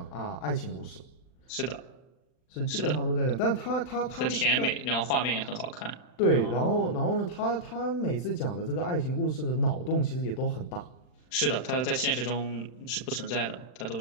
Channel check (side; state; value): right; late; 39 ms